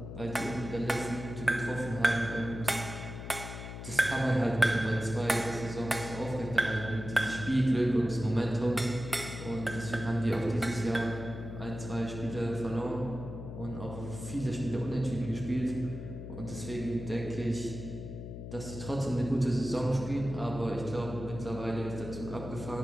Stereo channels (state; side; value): noise; left; hum, 9 dB below the sound